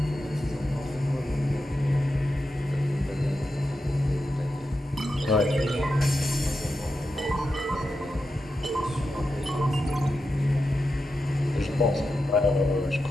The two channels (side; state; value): both; normal; correlation 0.89